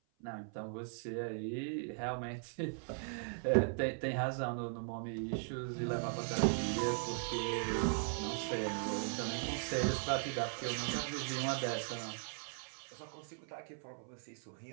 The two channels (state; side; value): silent; left; 52 dB below the other